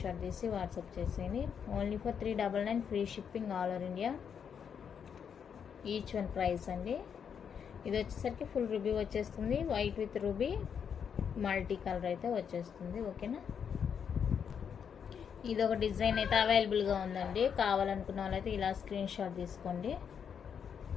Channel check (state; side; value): quieter; right; 7.4 dB